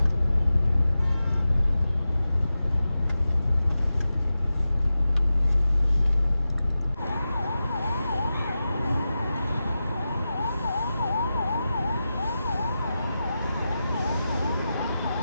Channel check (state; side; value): inverted; both; correlation -0.93